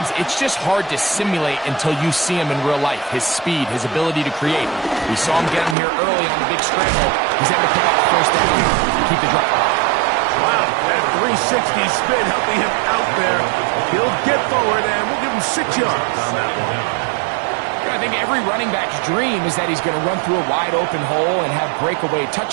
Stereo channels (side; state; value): left; drops out; at 5.8 s